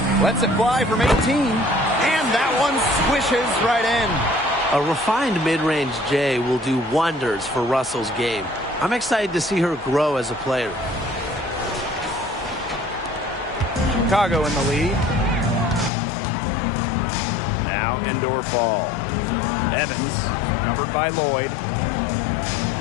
Lets it fly from 18. And that one swishes right in. A refined mid-range J will do wonders for Russell's game. I'm excited to see her grow as a player. Chicago in the lead. Now Endorfall. Evans covered by Lloyd.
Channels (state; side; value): drops out; right; at 15.9 s